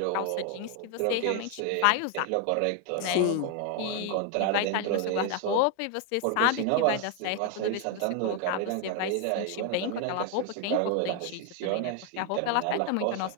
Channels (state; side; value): different; both; correlation 0.00